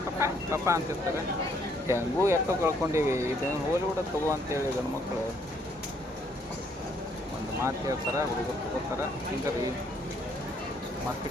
ಪಪ್ಪ ಅಂತಿರ್ತಾರೆ. ಹೆಂಗೂ ಎಷ್ಟೋ ಕಳ್ಕೊಂಡೀವಿ. ಇದನ್ನು ಹೋಲಿವುಡ್ ತಗೋ ಅಂತೇಳಿ ಗಂಡು ಮಕ್ಕಳು ಒಂದು ಮಾತು ಹೇಳ್ತಾರೆ, ಹುಡುಗರು ತಗೋತಾರೆ. ಹಿಂಗೆ ರೀ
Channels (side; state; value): both; normal; correlation 0.68